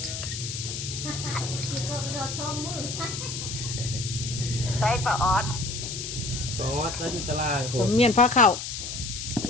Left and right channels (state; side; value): noise; left; hiss, 6 dB below the sound